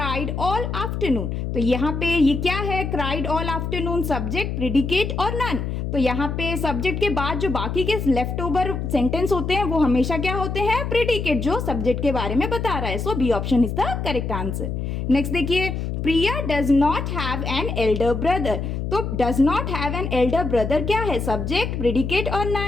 all afternoon, तो यहाँ पे ये क्या है, cried all afternoon, subject, predicate और नन? तो यहाँ पे सब्जेक्ट के बाद जो बाकी के लेफ्ट ओवर सेंटेंस होते हैं वो हमेशा क्या होते हैं, प्रेडिकेट, जो सब्जेक्ट के बारे में बता रहा है, so B option is the correct answer. Next देखिए Priya does not have an elder brother, तो does not have an elder brother क्या है, सब्जेक्ट, प्रेडिकेट और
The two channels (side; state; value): left; noise; hum, 3 dB below the sound